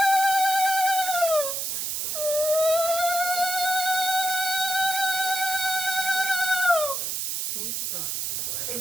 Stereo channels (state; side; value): noise; right; hiss, 2 dB below the sound